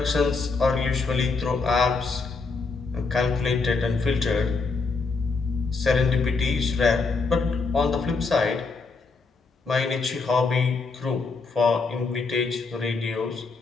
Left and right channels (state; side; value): quieter; right; 4.3 dB